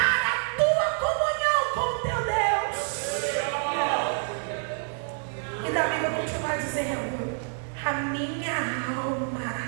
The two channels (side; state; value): left; silent; 60 dB below the other